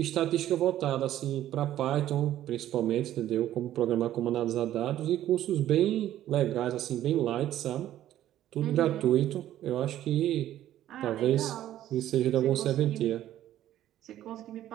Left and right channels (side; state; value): left; quieter; 12.6 dB